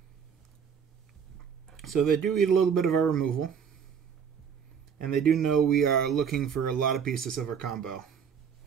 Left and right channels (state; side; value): quieter; left; 7.2 dB